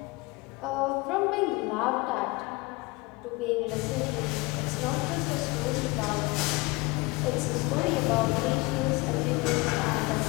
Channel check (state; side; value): quieter; right; 24.1 dB